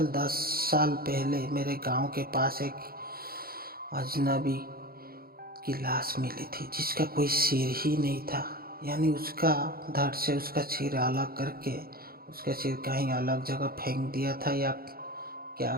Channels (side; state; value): left; late; 0.44 ms